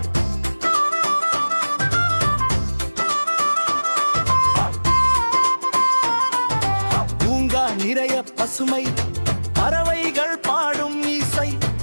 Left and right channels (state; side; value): inverted; both; correlation -1.00